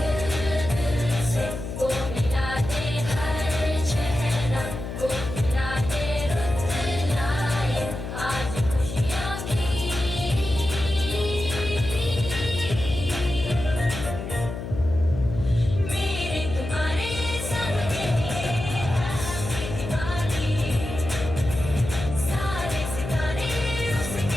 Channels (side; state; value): left; noise; hum, 7 dB below the sound